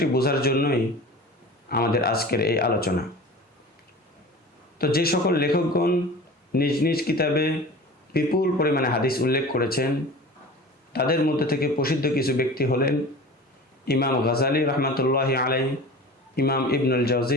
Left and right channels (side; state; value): both; normal; correlation 0.37